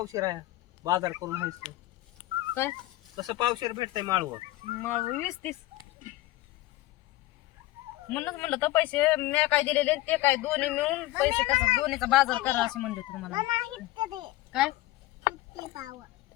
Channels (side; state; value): right; quieter; 17.6 dB